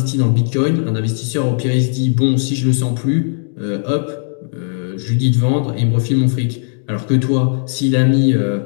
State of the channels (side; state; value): right; silent; digital silence